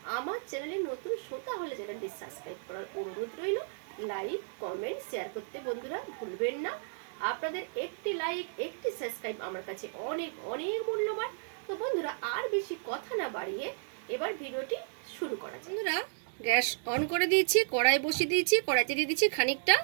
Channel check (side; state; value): left; silent; digital silence